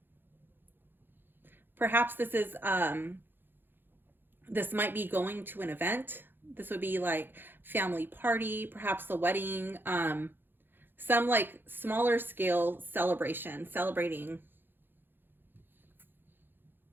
Perhaps this is this might be going to an event. This would be like family party, perhaps a wedding, some like smaller scale celebration, celebrating.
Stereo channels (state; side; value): late; left; 0.098 ms